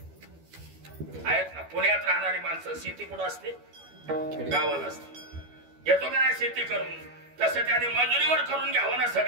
आहेत ना पुण्यात राहणारी माणसं शेती कुठं असते गावाला असते येतो का नाही शेती करून तसं त्याने मजुरीवर करून घ्यावं ना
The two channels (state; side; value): late; left; 12 ms